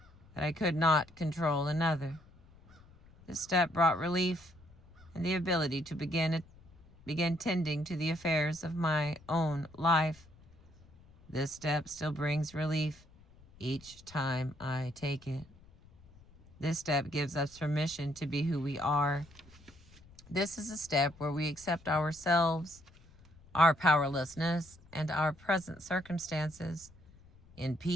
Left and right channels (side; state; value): left; noise; rumble, 25 dB below the sound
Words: that I could not control another. This step brought relief and the ability to begin tending to the affairs of my own life. This step still brings relief each time I take it. This step gives us permission to be who we are. This is a step where we accept ourselves, our powerlessness, and our present circumstances in